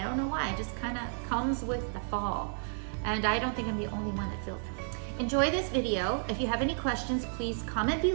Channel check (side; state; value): left; silent; digital silence